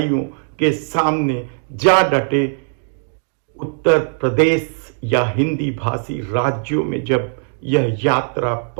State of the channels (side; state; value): left; silent; digital silence